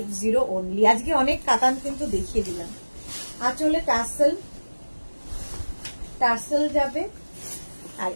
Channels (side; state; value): both; inverted; correlation -1.00